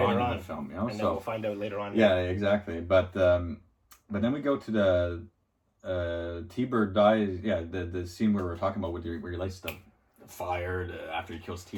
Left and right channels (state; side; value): identical; both; correlation 1.00